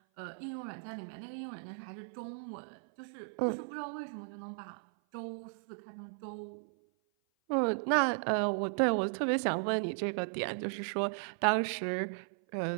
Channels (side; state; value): left; silent; 54 dB below the other